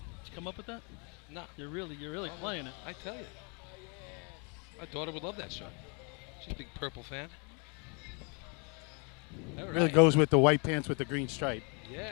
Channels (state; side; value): quieter; right; 34.8 dB